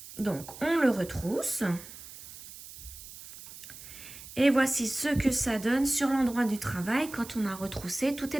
Donc, on le retrousse. Et voici ce que ça donne sur l'endroit du travail. Quand on a retroussé, tout est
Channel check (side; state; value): right; noise; hiss, 15 dB below the sound